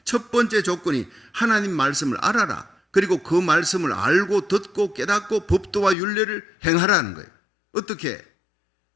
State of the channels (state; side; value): drops out; right; at 6.0 s